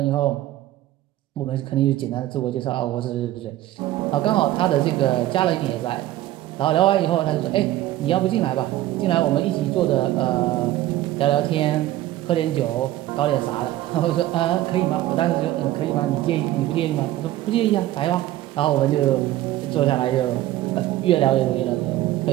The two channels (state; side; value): quieter; left; 14.7 dB